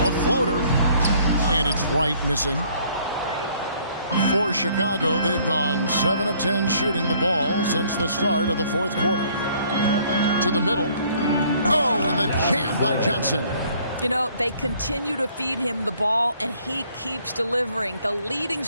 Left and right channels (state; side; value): inverted; both; correlation -0.61